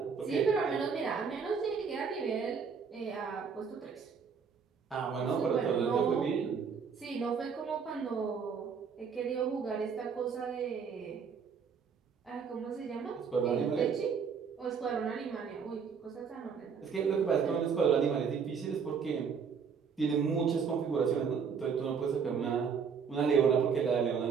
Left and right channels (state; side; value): quieter; left; 6.2 dB